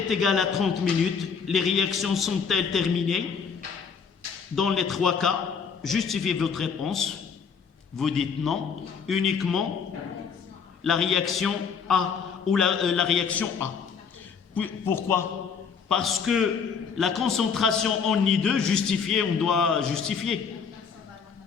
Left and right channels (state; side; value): quieter; right; 6.2 dB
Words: égale à 30 minutes, les réactions sont-elles terminées? Dans les 3 cas, justifiez votre réponse. Vous dites non, uniquement la réaction A ou la réaction A. Pourquoi? Parce que la concentration en I2 justifiée, on doit justifier.